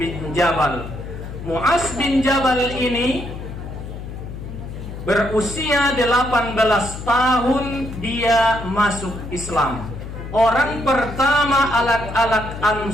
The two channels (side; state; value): left; noise; hum, 9 dB below the sound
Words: Jabal. Mu'az bin Jabal ini berusia 18 tahun dia masuk Islam. Orang pertama alat